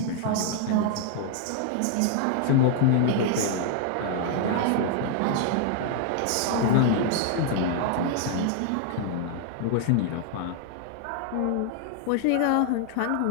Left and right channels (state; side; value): different; both; correlation -0.01